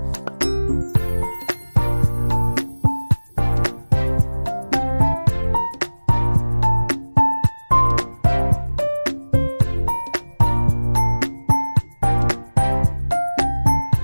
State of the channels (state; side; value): inverted; both; correlation -1.00